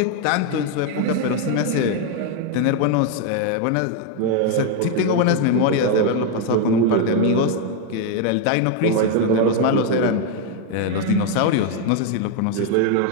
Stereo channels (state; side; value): different; both; correlation 0.01